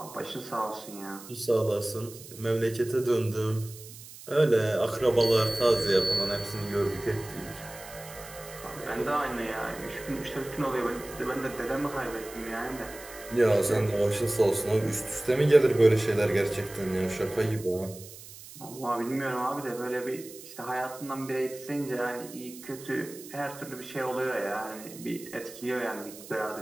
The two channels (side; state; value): right; noise; hiss, 16 dB below the sound